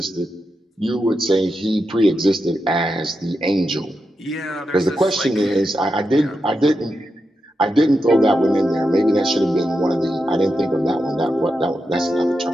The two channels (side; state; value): both; normal; correlation 0.87